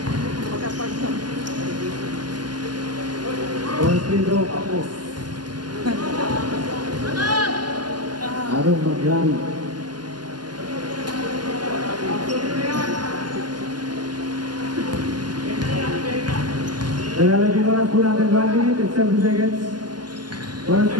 First free throw ako. Anong mangyari? Nalalagyan oras po natin 1 minute and 7 seconds. First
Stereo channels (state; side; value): late; left; 0.70 ms